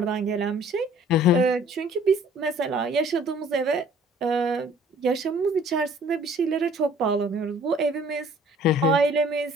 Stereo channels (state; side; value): normal; both; correlation 0.54